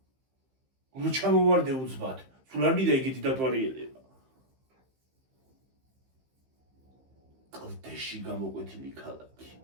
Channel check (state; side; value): late; left; 15 ms